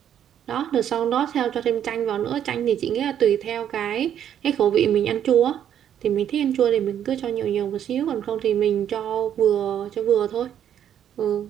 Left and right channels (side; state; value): left; quieter; 9.8 dB